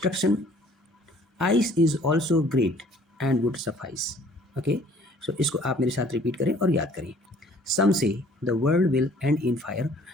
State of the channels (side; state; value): both; normal; correlation 0.55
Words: ice is also great and would suffice. Okay, so इसको आप मेरे साथ repeat करें और याद करें. Some say the world will end in fire,